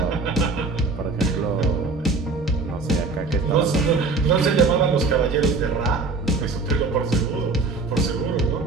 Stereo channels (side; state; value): left; quieter; 4.0 dB